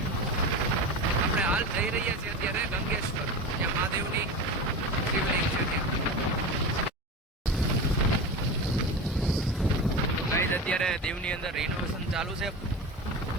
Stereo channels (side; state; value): both; normal; correlation 0.27